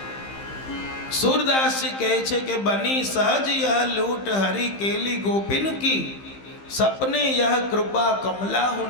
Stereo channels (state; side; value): late; right; 15 ms